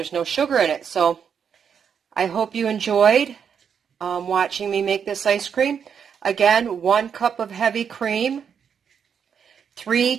no sugar in it. So I hope you enjoyed watching me make this ice cream. Again, 1 cup of heavy cream, 3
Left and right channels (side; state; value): left; quieter; 7.3 dB